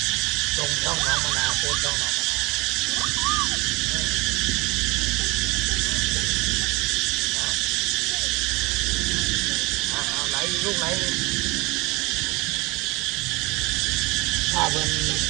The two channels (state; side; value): quieter; left; 24.7 dB